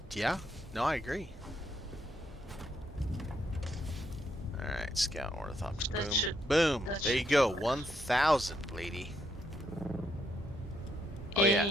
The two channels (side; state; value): both; normal; correlation 0.76